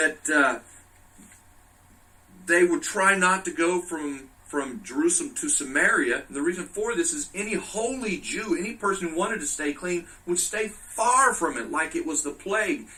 they would try not to go from Jerusalem to Samaria. And the reason for this is any holy Jew, any person who wanted to stay clean, would stay far from it like it was the plague,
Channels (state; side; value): identical; both; correlation 1.00